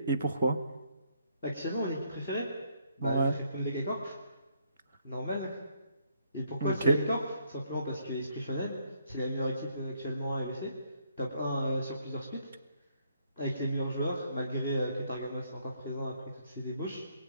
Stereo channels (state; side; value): inverted; both; correlation -0.70